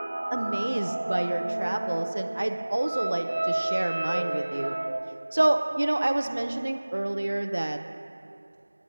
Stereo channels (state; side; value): inverted; both; correlation -1.00